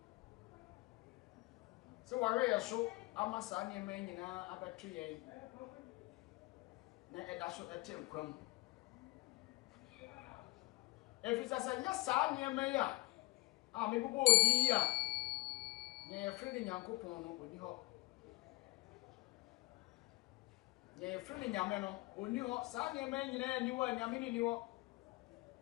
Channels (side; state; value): right; quieter; 22.7 dB